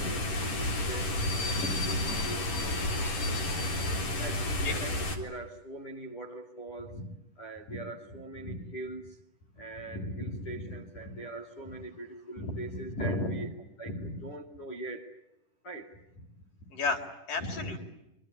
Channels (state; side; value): late; right; 10 ms